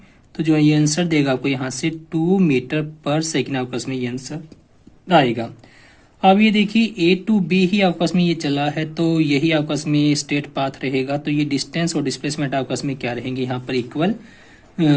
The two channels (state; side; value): identical; both; correlation 1.00